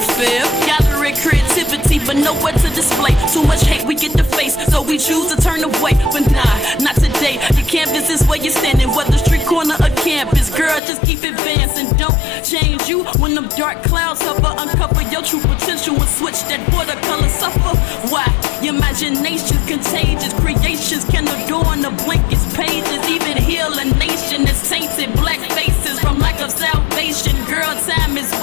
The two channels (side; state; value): right; drops out; at 10.8 s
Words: feel. Gathering creativity, but nowhere to display. Too much hate we get to face, so we choose to turn away. But nah, not today. Your canvas is where you're standing, whether street corner or campus. Girl, just keep advancing. Don't change you when them dark clouds hover. Uncover your true potential and switch that watercolor suffer. Why? Your imagination's contagious. Creations can adorn the blankest pages. Even heal a nation that's tainted. Black faces from lack of salvation. Girl, time is